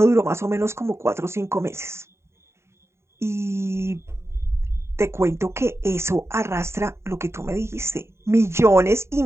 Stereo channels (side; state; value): left; late; 0.13 ms